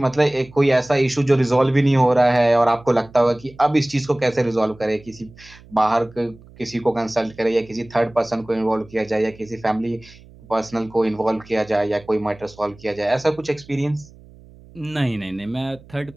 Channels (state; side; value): noise; right; hum, 23 dB below the sound